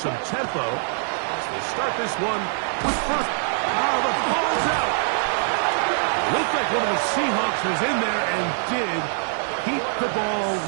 tempo as they start this one with first. Oh, the ball's out. Looked like one of the Seahawks was in there and did keep the ball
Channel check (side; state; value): left; silent; 63 dB below the other